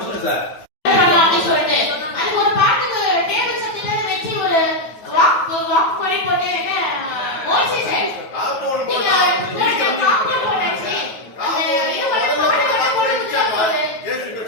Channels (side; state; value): right; late; 9.4 ms